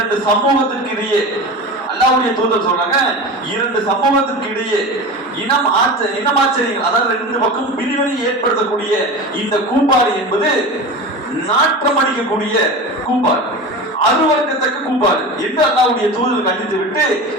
சமூகத்திற்கு இடையே, அல்லாஹ்வுடைய தூதர் சொல்றாங்க, இரண்டு சமூகத்திற்கு இடையே இனமாச்சரியங்கள், அதாவது ரெண்டு பக்கம் பிரிவினை ஏற்படுத்தக்கூடிய இந்த கூப்பாடு என்பது நாட்டம் அடிக்கக்கூடிய கூப்பாடு, அருவருக்கத்தக்க கூப்பாடு என்று அல்லாஹ்வுடைய தூதர் கண்டித்து விட்டு,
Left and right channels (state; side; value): normal; both; correlation 0.29